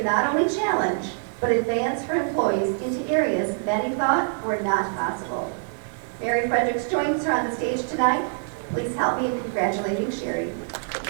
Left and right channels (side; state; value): left; silent; digital silence